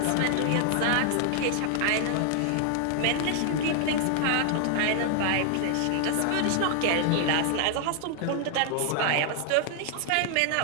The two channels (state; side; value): different; both; correlation 0.00